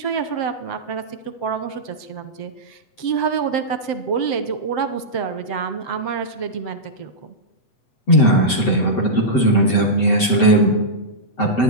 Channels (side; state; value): right; late; 7.8 ms